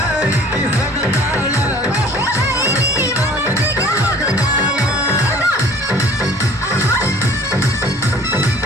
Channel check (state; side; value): normal; both; correlation 0.50